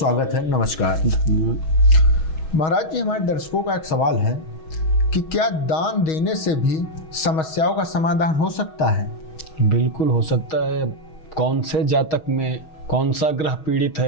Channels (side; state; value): right; late; 6.3 ms